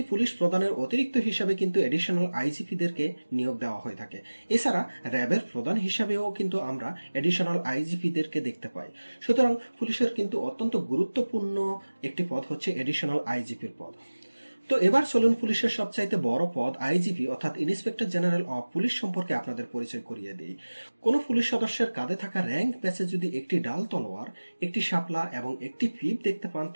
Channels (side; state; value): both; inverted; correlation -1.00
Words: পুলিশ প্রধানের অতিরিক্ত হিসাবে কিন্তু এডিশনাল আইজিপিদেরকে নিয়োগ দেওয়া হয়ে থাকে। এছাড়া র্যাবের প্রধান হিসাবেও কিন্তু আমরা এডিশনাল আইজিপিদেরকে দেখতে পাই। সুতরাং পুলিশের কিন্তু অত্যন্ত গুরুত্বপূর্ণ একটি পদ হচ্ছে এডিশনাল আইজিপির পদ। তো এবার চলুন পুলিশের সবচাইতে বড় পদ আইজিপি অর্থাৎ ইন্সপেক্টর জেনারেল অফ পুলিশ সম্পর্কে আপনাদের পরিচয় করিয়ে দিই। কোন পুলিশ সদস্যের কাঁধে থাকা র্যাঙ্ক ব্যাচে যদি একটি ডাল তলোয়ার, একটি শাপলা এবং একটি পিপ দেখতে পান